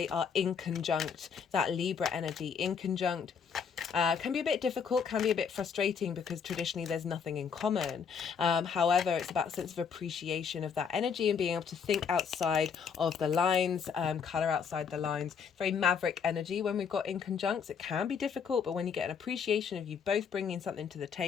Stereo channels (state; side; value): quieter; right; 6.6 dB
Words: are in conjunct, that Libra energy in conjunct. Can be a bit difficult, can be a bit frustrating because traditionally there's nothing in common. However, it's about a sense of appreciation of that energy and being able to think outside of the lines, colour outside the lines. Very maverick energy when we've got in conjuncts. It can be difficult, but when you get an appreciation of you both bringing something to the